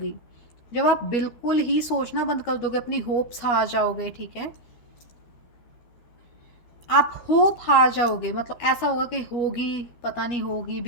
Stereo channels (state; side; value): late; right; 13 ms